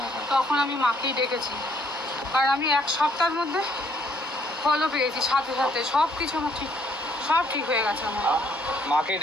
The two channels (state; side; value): normal; both; correlation 0.66